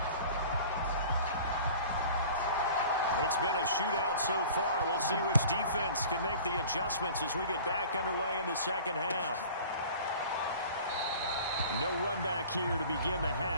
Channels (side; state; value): both; inverted; correlation -0.44